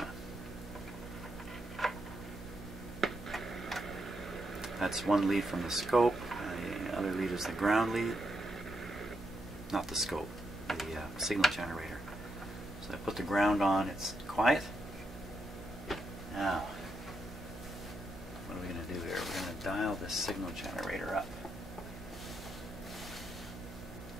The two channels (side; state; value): both; normal; correlation 0.82